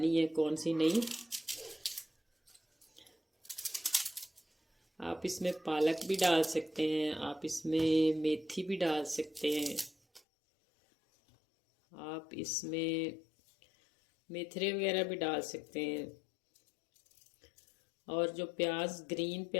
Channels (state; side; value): drops out; right; at 10.2 s